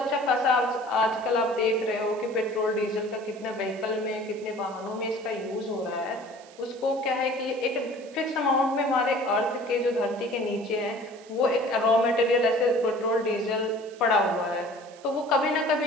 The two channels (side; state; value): right; noise; hiss, 24 dB below the sound